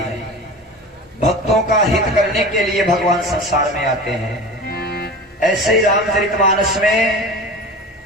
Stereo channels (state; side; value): normal; both; correlation 0.34